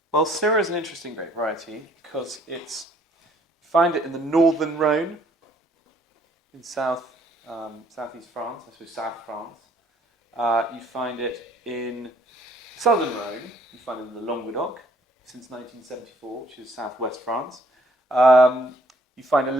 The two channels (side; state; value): both; normal; correlation 0.62